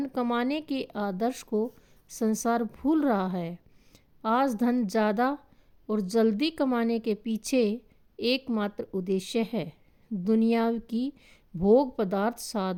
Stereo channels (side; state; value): both; identical; correlation 1.00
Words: कमाने के आदर्श को संसार भूल रहा है। आज धन ज़्यादा और जल्दी कमाने के पीछे एकमात्र उद्देश्य है दुनिया की भोग पदार्थ,